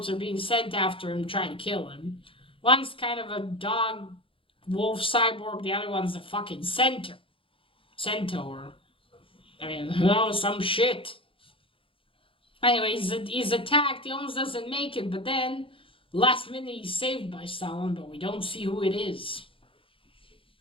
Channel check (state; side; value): late; right; 0.26 ms